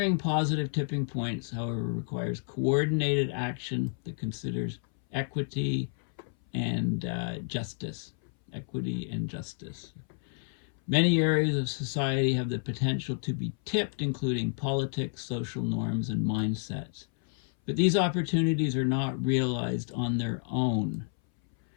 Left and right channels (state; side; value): silent; right; 58 dB below the other